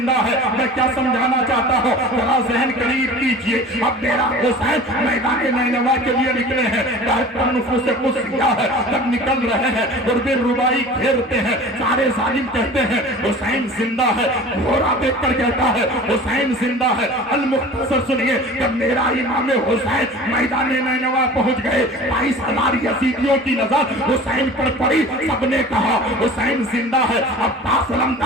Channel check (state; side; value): normal; both; correlation 0.40